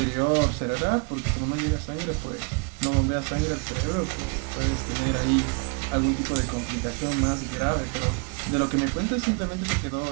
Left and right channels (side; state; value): left; quieter; 34.5 dB